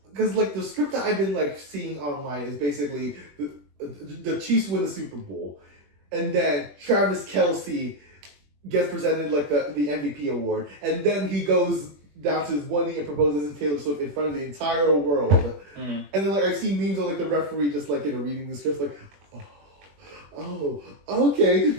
because like the script that I've been like seeing online is basically the Chiefs win the Super Bowl, and then Travis Kelce gets presented like the MVP award, and then he goes down to his one knee and proposes to Taylor Swift in front of the entire world. Mm. And then like I've seen memes of like the referee just like reading the script like, oh, okay,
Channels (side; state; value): left; late; 21 ms